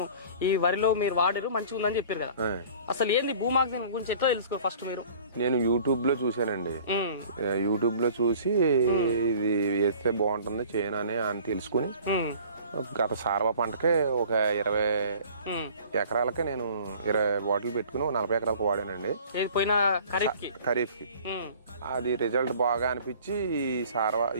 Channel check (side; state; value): both; inverted; correlation -0.48